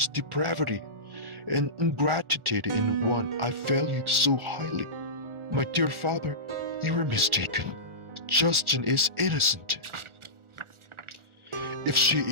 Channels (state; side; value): late; left; 1.4 ms